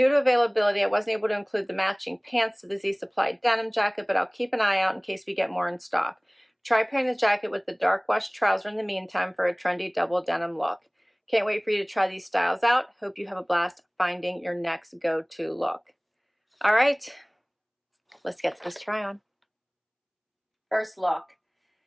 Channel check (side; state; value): both; identical; correlation 1.00